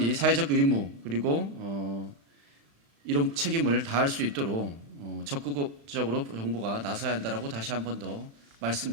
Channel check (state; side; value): late; left; 35 ms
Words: 사회적 의무 그리고 이런 책임을 다할 수 있도록 적극적으로 정부가 나서야 한다라고 다시 한 번 더